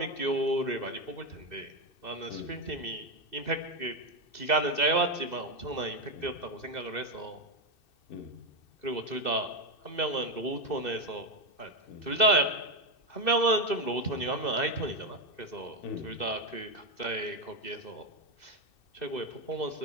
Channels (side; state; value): right; late; 2.6 ms